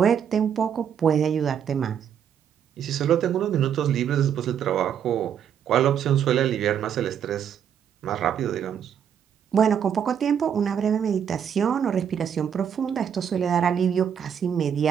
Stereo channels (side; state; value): left; quieter; 8.4 dB